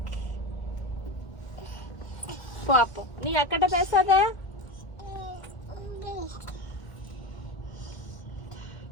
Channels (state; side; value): late; right; 1.5 ms